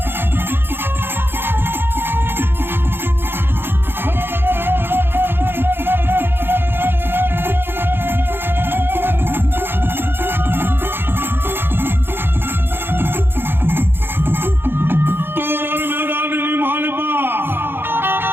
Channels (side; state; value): left; late; 0.10 ms